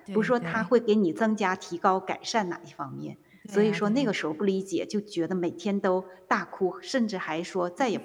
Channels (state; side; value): identical; both; correlation 1.00